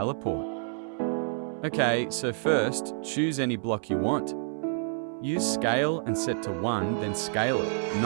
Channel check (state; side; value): silent; left; 59 dB below the other